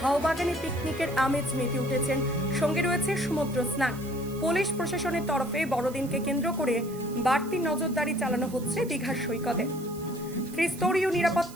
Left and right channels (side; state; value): right; noise; hiss, 18 dB below the sound